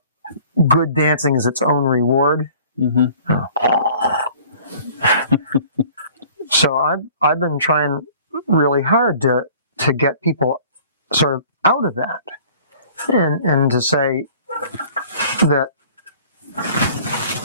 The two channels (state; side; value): inverted; both; correlation -0.50